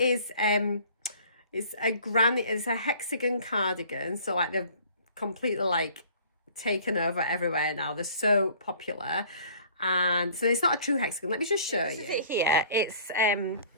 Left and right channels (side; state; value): both; inverted; correlation -0.52